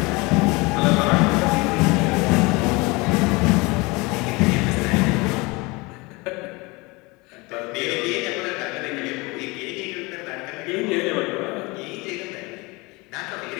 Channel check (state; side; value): quieter; right; 24.9 dB